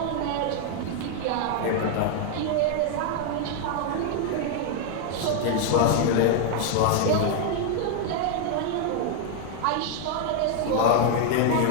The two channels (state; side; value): different; both; correlation 0.00